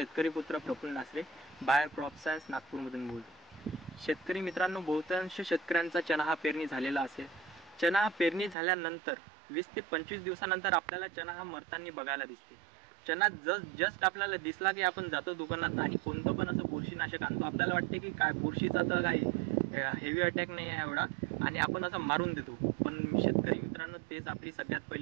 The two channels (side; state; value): left; drops out; at 8.6 s